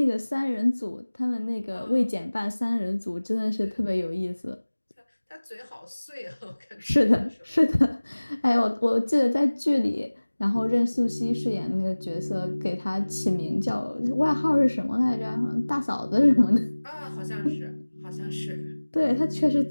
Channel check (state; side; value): inverted; both; correlation -1.00